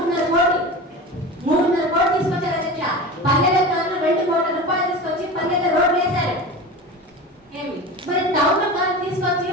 కోట్లు తీసుకొచ్చారు అధ్యక్ష. పల్లెల కాలంలో 2 కోట్ల రూపాయలు తీసుకొచ్చి పల్లెల రోడ్లు వేశారు. మరి టౌన్ కాలం తీసుకొచ్చి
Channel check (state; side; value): normal; both; correlation 0.30